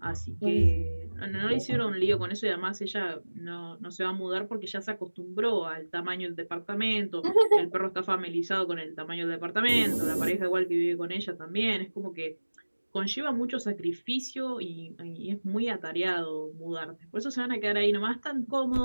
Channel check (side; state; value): both; inverted; correlation -1.00